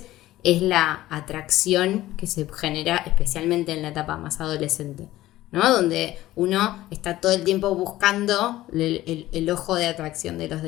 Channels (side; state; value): right; quieter; 15.6 dB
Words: es la atracción que se genera especialmente en la etapa más adolescente, ¿no? Donde uno está todo el tiempo buscando el ojo de atracción de los